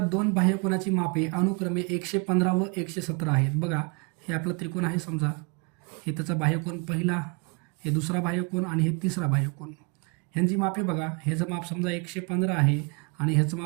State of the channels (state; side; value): quieter; left; 31.6 dB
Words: दोन बाह्यकोनाची मापे अनुक्रमे 115 व 117 आहेत. बघा, हे आपलं त्रिकोण आहे समजा, हे त्याचा बाह्यकोन पहिला, हे दुसरा बाह्यकोन आणि हे तिसरा बाह्यकोन. ह्यांची मापे बघा, ह्याचं माप समजा 115 आहे आणि ह्याचं